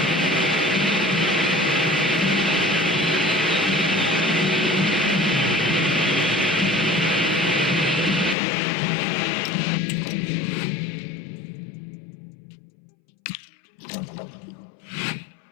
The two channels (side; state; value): right; drops out; at 8.3 s